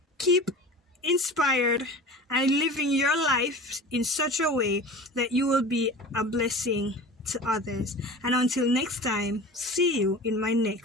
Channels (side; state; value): both; normal; correlation 0.37